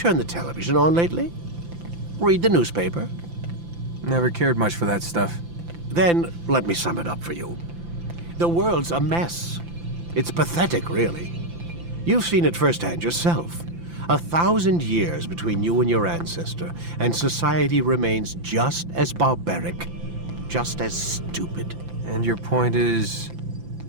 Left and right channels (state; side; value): late; left; 5.9 ms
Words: the television on lately? Read the newspaper? Never cared much for that stuff. Then, let me sum it up for you. The world's a mess. It's pathetic, really. You've seen it firsthand yourself. 1,000 years between you and your ancestor, and society remains just as barbaric, just as stupid. And your point is?